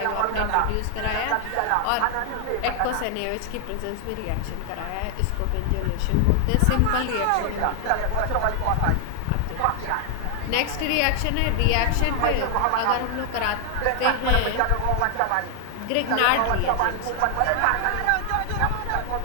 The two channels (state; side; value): different; both; correlation 0.00